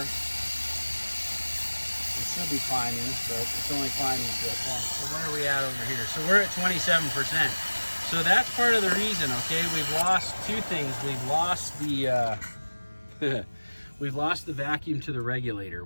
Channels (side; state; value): both; inverted; correlation -1.00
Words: It should be climbing, but it's only climbing to a point. So where are we at over here? So we're at 27%. So that's part of the reason, okay? We've lost two things. We've lost the we've lost the vacuum to the regulator